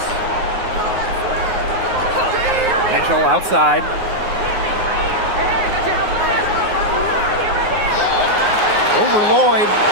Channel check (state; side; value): late; left; 9.5 ms